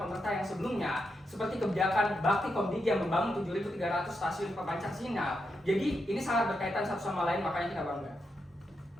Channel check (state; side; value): normal; both; correlation 0.84